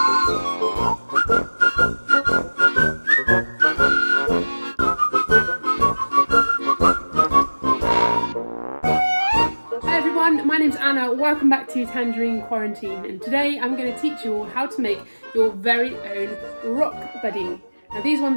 name's Anna, welcome back to Tangerine Quarantine, and today I'm going to teach you all how to make your very own rock buddy. Now these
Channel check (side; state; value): both; inverted; correlation -1.00